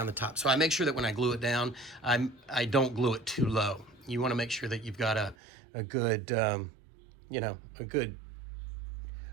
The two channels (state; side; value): drops out; left; at 5.4 s